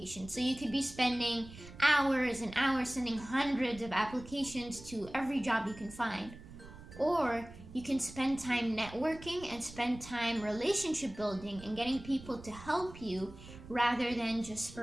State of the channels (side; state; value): right; noise; rumble, 16 dB below the sound